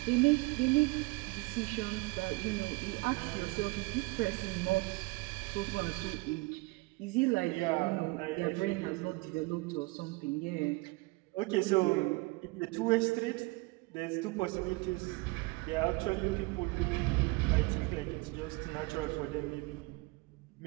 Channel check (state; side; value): quieter; left; 24.8 dB